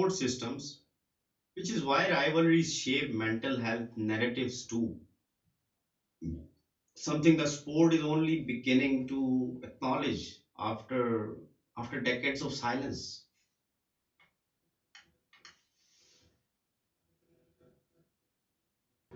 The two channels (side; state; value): both; identical; correlation 1.00